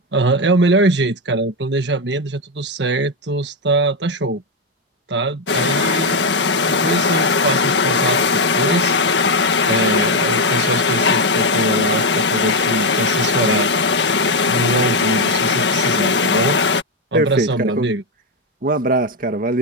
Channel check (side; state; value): both; normal; correlation 0.05